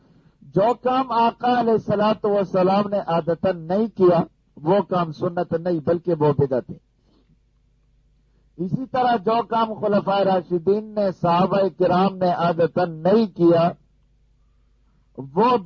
جو کام آقا علیہ الصلوۃ والسلام نے عادتن نہیں کیا وہ کام سنت نہیں بلکہ وہ بدعت ہے. اسی طرح جو کام خلفائے راشدین نے، صحابہ کرام نے عادتن نہیں کیا وہ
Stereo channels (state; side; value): identical; both; correlation 1.00